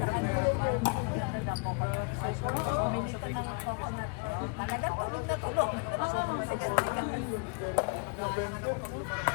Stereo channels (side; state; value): right; quieter; 33.0 dB